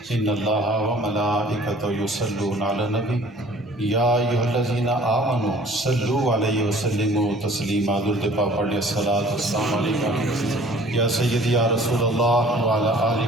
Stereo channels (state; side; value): normal; both; correlation 0.51